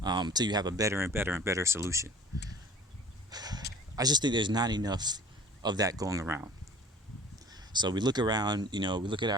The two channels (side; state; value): both; normal; correlation 0.46